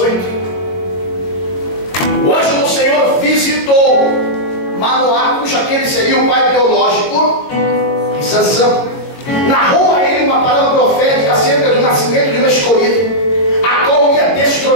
O anjo do Senhor visitou Manoá, cujo aquele seria o pai biológico de Sansão, narrou a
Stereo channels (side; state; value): right; late; 21 ms